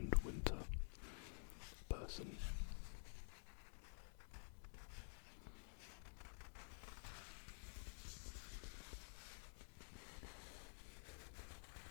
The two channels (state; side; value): silent; right; digital silence